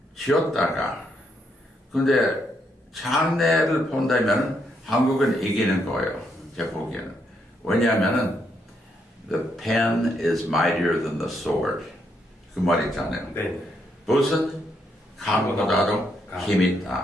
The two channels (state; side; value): normal; both; correlation 0.77